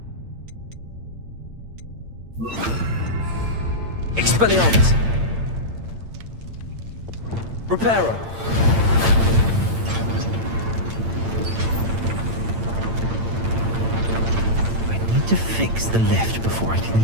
Expelliarmus! Reparo! To fix the lift before I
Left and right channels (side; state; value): left; late; 8.8 ms